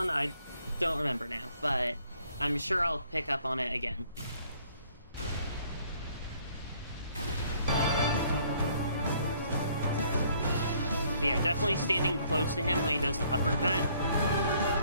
I don't remember now, but I'm sure I'll pick up on it again. But yeah, definitely standing close to him when he does the uppercut,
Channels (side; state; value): both; inverted; correlation -0.63